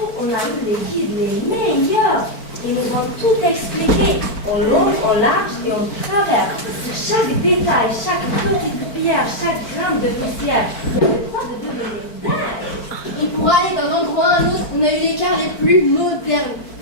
on a eu les guides les meilleurs. Ils nous ont tout expliqué, en long, en large et en travers. Chaque détail, chaque petite pierre, chaque gramme de poussière. On avait le temps de devenir dingue. Et pour aller d'un endroit à un autre, on a eu les cars les plus modernes.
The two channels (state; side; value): late; right; 4.5 ms